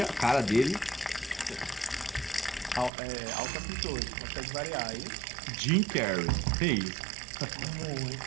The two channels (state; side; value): drops out; left; at 2.9 s